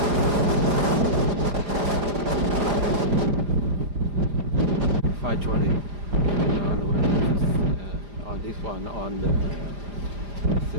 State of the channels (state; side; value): late; left; 4.9 ms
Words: On the way, on this one, on the